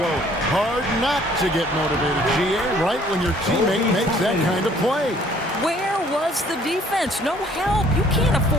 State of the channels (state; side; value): normal; both; correlation 0.59